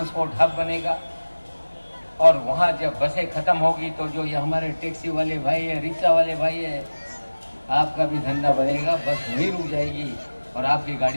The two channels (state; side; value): inverted; both; correlation -1.00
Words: हब बनेगा। और वहाँ जब बसें खत्म होगी तो जो ये हमारे टैक्सी वाले भाई है, रिक्शा वाले भाई है, आपका भी धंधा बनेगा। बस वहीं रुक जाएगी और आपकी